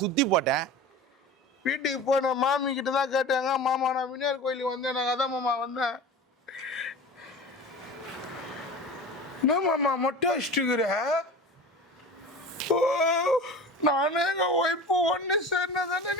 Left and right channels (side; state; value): both; normal; correlation 0.34